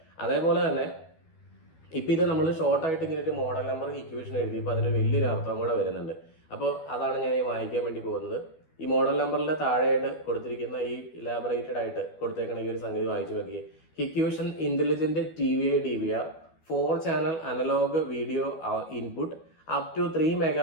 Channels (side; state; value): right; late; 12 ms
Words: അതേപോലെ തന്നെ ഇപ്പം ഇത് നമ്മൾ ഷോർട്ടായിട്ട് ഇങ്ങനെ ഒരു മോഡൽ നമ്പർ ഇക്വേഷൻ എഴുതിയപ്പോൾ അതിന് വലിയൊരു അർത്ഥം കൂടെ വരുന്നുണ്ട്. അപ്പോൾ അതാണ് ഞാൻ ഈ വായിക്കാൻ വേണ്ടി പോകുന്നത്. ഈ മോഡൽ നമ്പറിൻ്റെ താഴെയായിട്ട് കൊടുത്തിരിക്കുന്ന ഈ ഇലാബറേറ്റഡ് ആയിട്ട് കൊടുത്തേക്കണ ഈ ഒരു സംഗതി വായിച്ചു നോക്കിയേ. Hikvision intelligent TVI DVR 4 channel analogue video input, up to 3